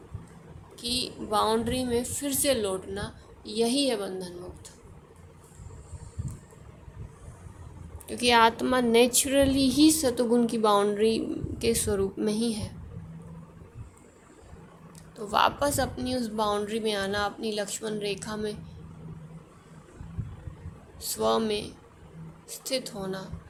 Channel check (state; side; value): identical; both; correlation 1.00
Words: की बाउंड्री में फिर से लौटना। यही है बंधन मुक्त। क्योंकि आत्मा नेचुरली ही सतोगुण की बाउंड्री के स्वरूप में ही है। तो वापस अपनी उस बाउंड्री में आना, अपनी लक्ष्मण रेखा में स्व में स्थित होना,